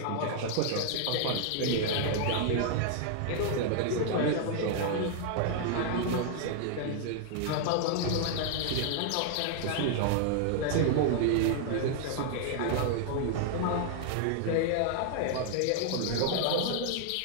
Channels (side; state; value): both; different; correlation 0.00